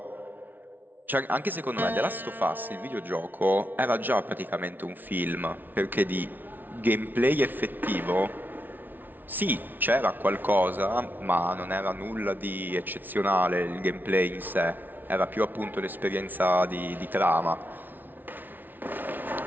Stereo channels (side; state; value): left; late; 0.087 ms